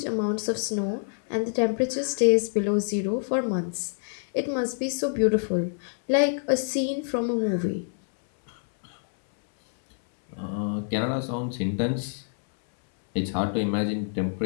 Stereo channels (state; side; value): silent; right; 61 dB below the other